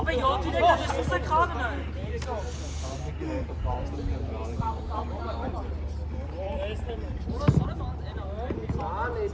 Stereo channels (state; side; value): identical; both; correlation 1.00